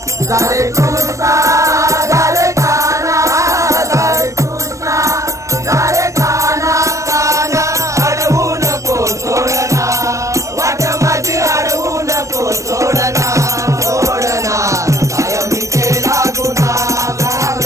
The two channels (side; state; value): left; late; 0.15 ms